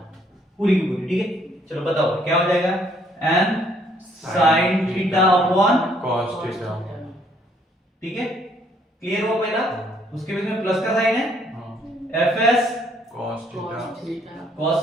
पूरी की पूरी, ठीक है। चलो बताओ क्या हो जाएगा, n sin theta upon, cos theta. ठीक है, क्लियर हुआ पहला। उसके बीच में प्लस का साइन है, हाँ, fs cos theta cos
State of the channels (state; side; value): normal; both; correlation 0.66